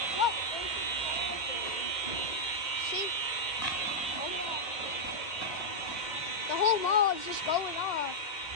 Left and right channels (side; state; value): right; late; 2.2 ms